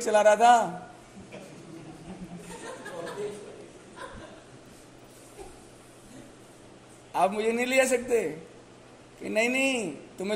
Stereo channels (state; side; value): identical; both; correlation 1.00